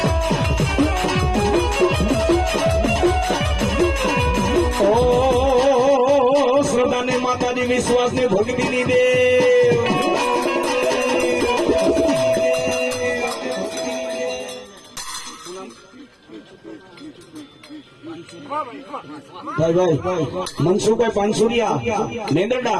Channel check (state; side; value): identical; both; correlation 1.00